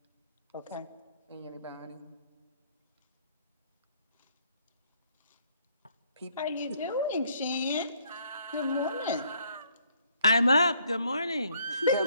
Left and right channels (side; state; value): both; inverted; correlation -0.67